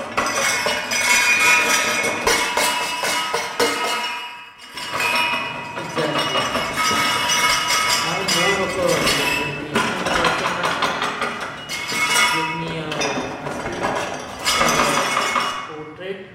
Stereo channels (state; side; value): identical; both; correlation 1.00